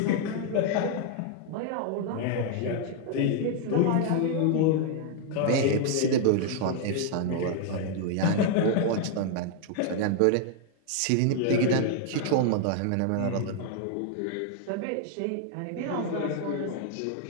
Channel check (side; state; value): both; different; correlation 0.00